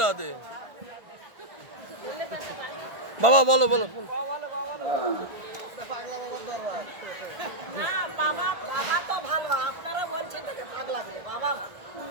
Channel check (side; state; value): left; late; 1.5 ms